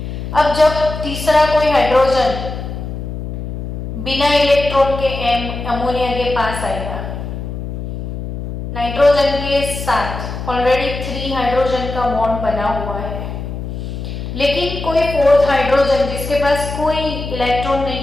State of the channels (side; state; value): left; noise; hum, 6 dB below the sound